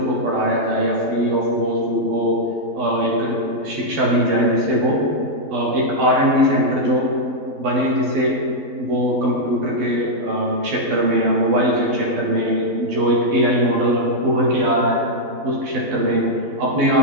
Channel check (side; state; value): left; late; 12 ms